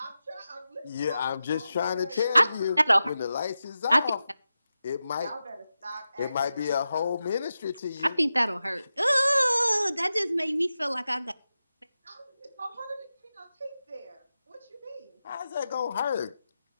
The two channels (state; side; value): inverted; both; correlation -0.92